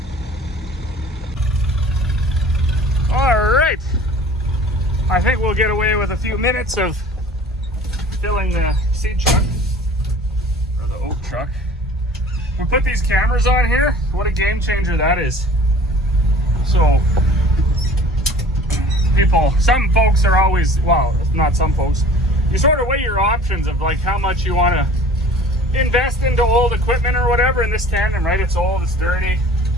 All right. I think we'll get away with a few minutes of filling the seed truck, or the oat truck. We put these cameras on here. What a game changer that is. So some folks are always, well, not some folks, you sort of weigh your options of like how much you want to invest into old equipment or whatever. In this tandem, right, it's old, it's dirty,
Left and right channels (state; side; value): normal; both; correlation 0.46